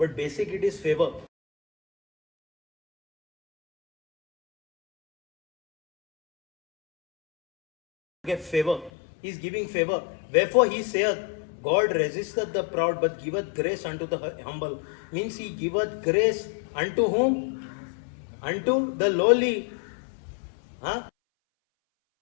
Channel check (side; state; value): right; drops out; at 8.9 s